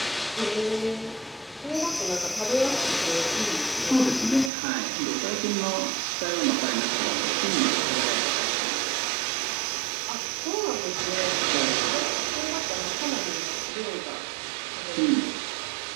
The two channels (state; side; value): drops out; left; at 4.5 s